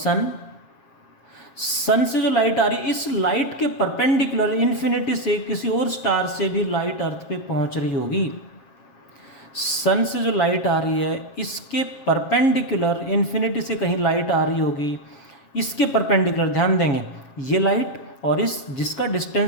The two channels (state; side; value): late; right; 7.4 ms